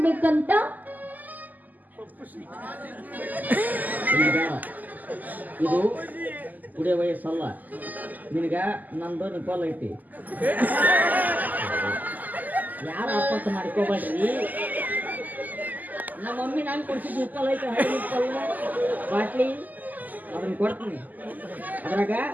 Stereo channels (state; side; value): late; left; 0.082 ms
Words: ಬೇಕಂತ? ಈಗ ಇದು ಕುಡಿಯೋ ವಯಸ್ಸಲ್ಲ ನಿನಗ. ನಂದು ನಿಪ್ಪಲ್ ಐತಿ. ಯಾರ ಅಪ್ಪತ್ತ ಮಾಡ್ಕೋಬೇಡ್ರಿ. ನಮ್ಮ ಮಮ್ಮಿ ನಾನು ಕೊಡ್ಸಿದ್ ನಿಪ್ಪಲ್ ಐತಿ, ಹಳೆ ನಿಪ್ಪಲ್ ಬಾಟ್ಲಿ ಅದನ್ನ ಕೊಡ್ತೀನಿ. ಅದ್ರಾಗ